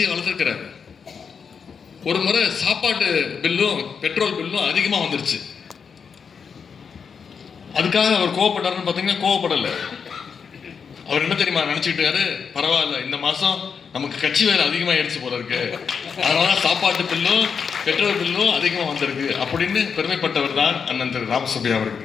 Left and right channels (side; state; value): right; quieter; 6.3 dB